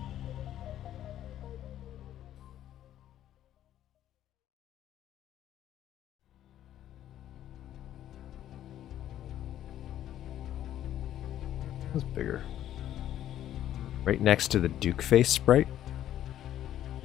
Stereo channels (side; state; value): right; quieter; 11.8 dB